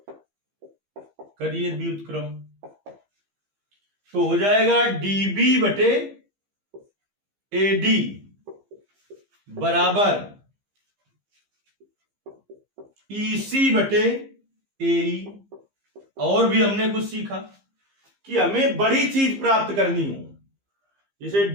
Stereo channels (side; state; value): left; late; 15 ms